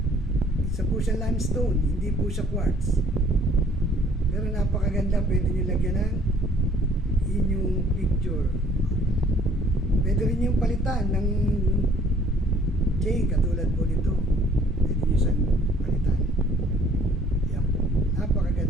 Isa po siyang limestone, hindi po siya quartz. Pero napakaganda, pwede nyo lagyan ng inyong picture. Pwede rin yung palitan ng chain katulad po nito. Pwede nyo siyang palitan. Yan po.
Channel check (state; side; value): normal; both; correlation 0.58